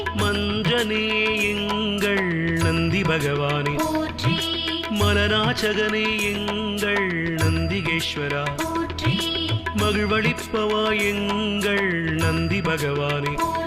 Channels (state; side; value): identical; both; correlation 1.00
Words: மஞ்சனே எங்கள் நந்தி பகவானே போற்றி மலநாச்சகனே எங்கள் நந்திகேஸ்வரா போற்றி மகிழ்வளிப்பவா எங்கள் நந்தி பகவானே